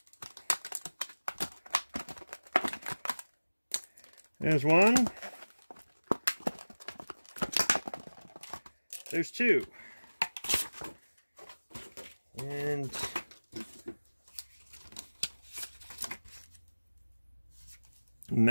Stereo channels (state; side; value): inverted; both; correlation -1.00